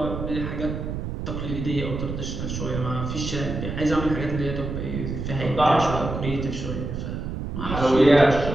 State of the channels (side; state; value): right; noise; rumble, 5 dB below the sound